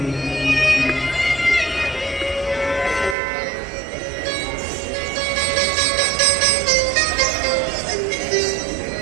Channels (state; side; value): drops out; left; at 3.2 s